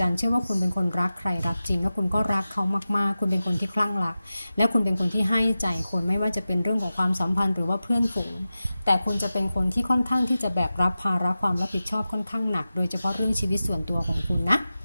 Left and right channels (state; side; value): inverted; both; correlation -0.94